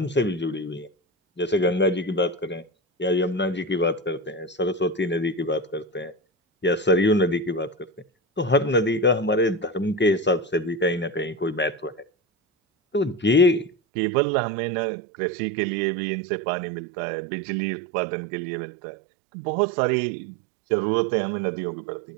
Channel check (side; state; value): left; drops out; at 13.7 s